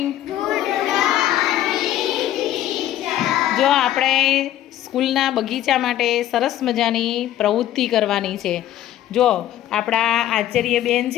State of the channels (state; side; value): quieter; right; 12.6 dB